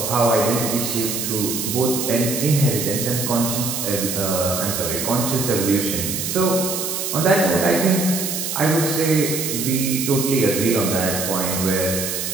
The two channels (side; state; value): right; noise; hiss, 3 dB below the sound